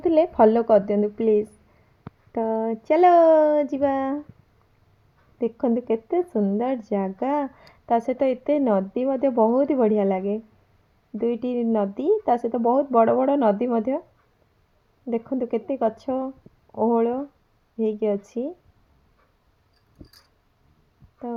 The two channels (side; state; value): both; identical; correlation 1.00